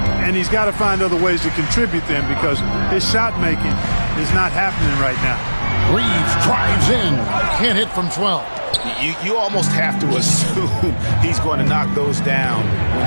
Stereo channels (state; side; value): inverted; both; correlation -1.00